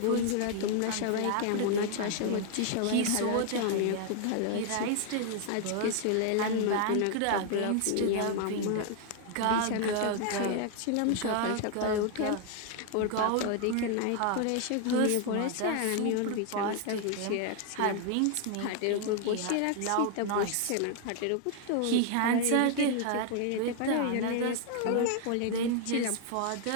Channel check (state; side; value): different; both; correlation 0.00